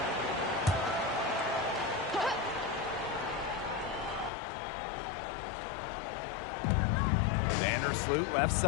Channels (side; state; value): right; drops out; at 4.3 s